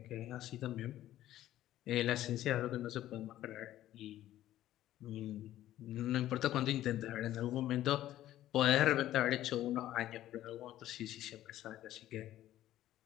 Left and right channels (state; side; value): quieter; right; 13.5 dB